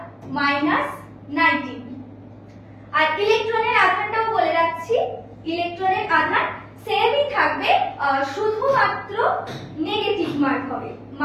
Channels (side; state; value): both; identical; correlation 1.00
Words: আর ইলেকট্রনের আধানটাও বলে রাখছি, ইলেকট্রনের আধান সেমই থাকবে, শুধুমাত্র নেগেটিভ মার্ক হবে,